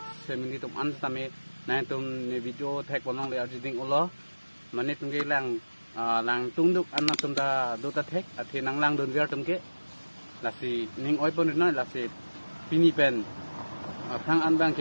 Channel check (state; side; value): inverted; both; correlation -1.00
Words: semini tum an tame nah tum ni video tag bonong le arjiding ulo mane tum ke lang tungduk an tum da do ta tag athi nang langdun viar tum ke lasi ning oi pon no lasi pini pen thang an bang